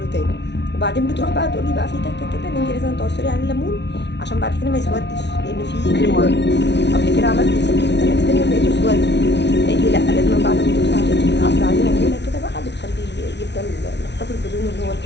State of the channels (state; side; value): late; right; 0.50 ms